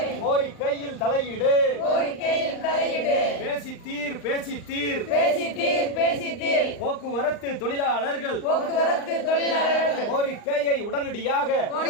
கோரிக்கையில் தலையிடு பேசித்தீர் போக்குவரத்து தொழிலாளர்கள் கோரிக்கையை உடனடியாக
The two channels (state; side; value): late; right; 39 ms